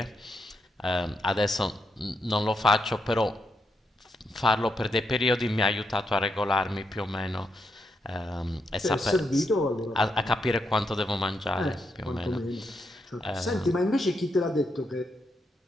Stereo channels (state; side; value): normal; both; correlation 0.81